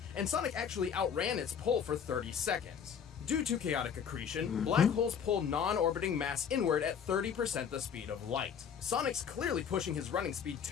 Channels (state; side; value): quieter; right; 7.5 dB